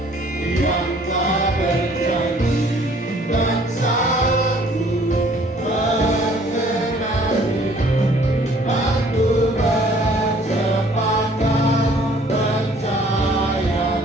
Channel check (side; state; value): both; normal; correlation 0.57